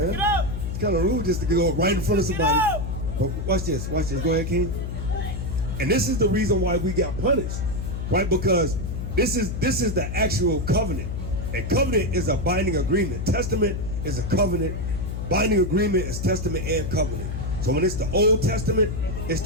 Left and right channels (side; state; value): left; noise; hum, 4 dB below the sound